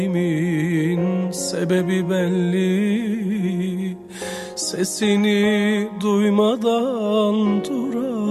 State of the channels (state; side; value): identical; both; correlation 1.00